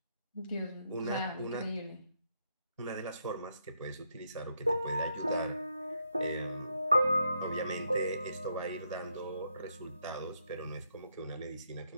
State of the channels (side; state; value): both; inverted; correlation -0.77